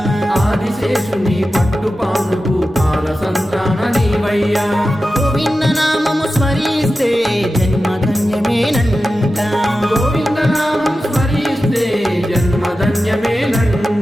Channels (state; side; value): normal; both; correlation 0.93